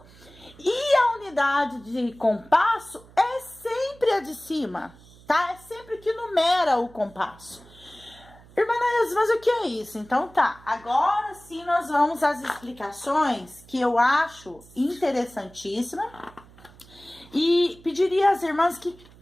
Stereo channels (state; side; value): noise; right; hum, 24 dB below the sound